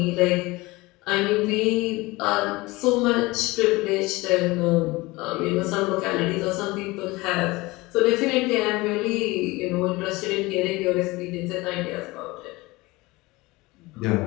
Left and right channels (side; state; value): right; quieter; 21.8 dB